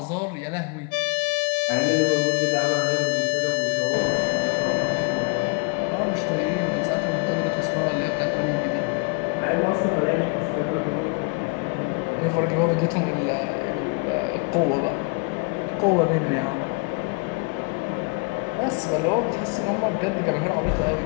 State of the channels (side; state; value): right; quieter; 31.4 dB